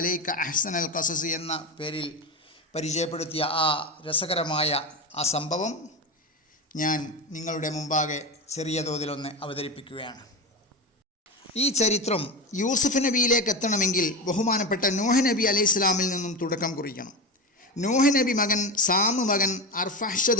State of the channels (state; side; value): normal; both; correlation 0.20